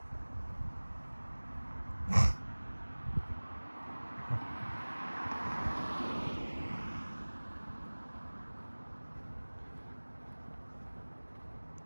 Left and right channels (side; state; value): both; inverted; correlation -1.00